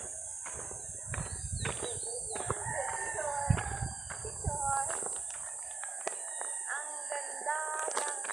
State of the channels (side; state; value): left; quieter; 4.3 dB